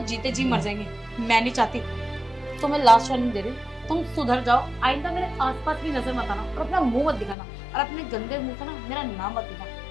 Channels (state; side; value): drops out; right; at 7.4 s